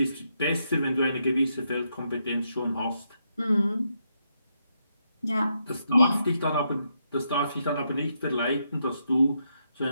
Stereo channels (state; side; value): inverted; both; correlation -0.80